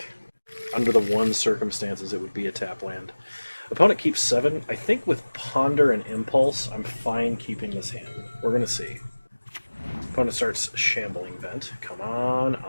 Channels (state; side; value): inverted; both; correlation -1.00